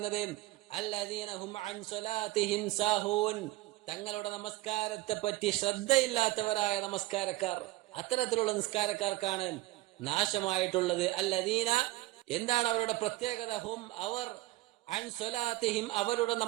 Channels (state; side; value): quieter; left; 19.0 dB